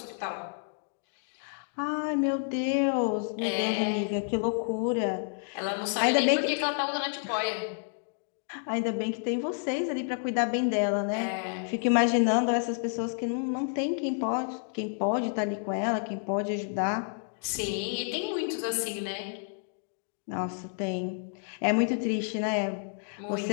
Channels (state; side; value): silent; right; digital silence